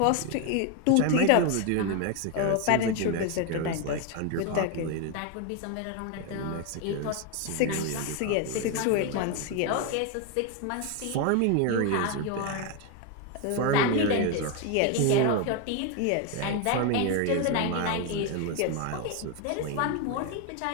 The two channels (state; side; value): different; both; correlation 0.01